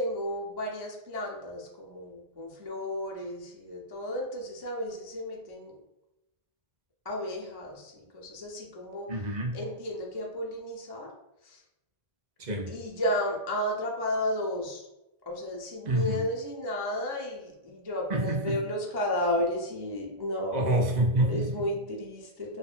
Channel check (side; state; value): left; late; 1.1 ms